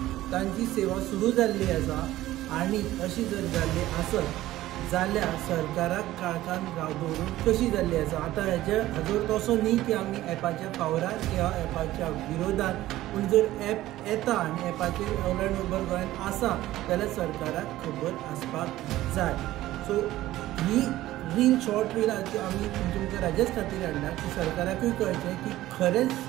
तांची सेवा सुरू जाल्ली आसा. आनी अशी जर जाल्ली आसत जाल्यार सरकाराक काळखान दवरून कशी जाल्ली आसा. आतां हाजो तसो न्ही की आमी एपाच्या फावरार किंवा एपाच्या विरोधात. पूण जर एप येता आनी एपाचेर ओला आनी उबर गोंयान आसा जाल्यार सरकाराक खबर आसपाक जाय. सो ही रील शॉर्ट रील आमी तुमच्या राज्याच खातीर हाडला की सरकाराकूय कळचें की खरेंच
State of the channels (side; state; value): left; quieter; 15.5 dB